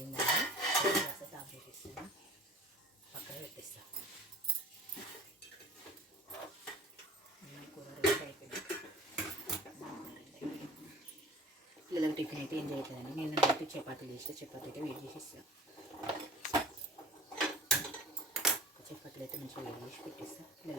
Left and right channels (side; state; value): both; normal; correlation 0.43